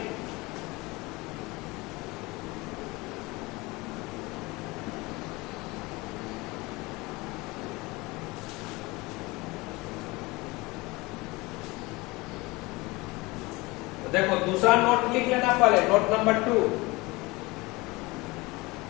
तो देखो दूसरा नोट लिख लेना पहले, note number 2।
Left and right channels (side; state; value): right; quieter; 23.0 dB